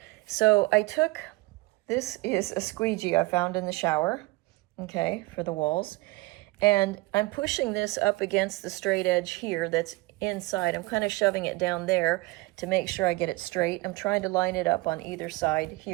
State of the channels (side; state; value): left; quieter; 22.6 dB